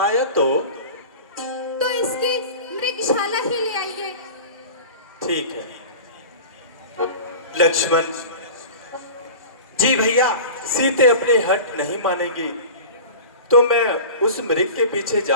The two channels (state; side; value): inverted; both; correlation -0.35